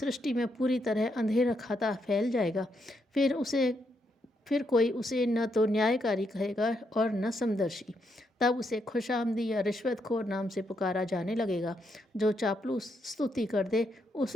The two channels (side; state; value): both; normal; correlation 0.79